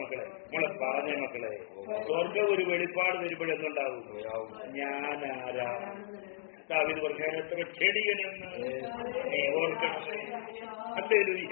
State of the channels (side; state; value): right; silent; digital silence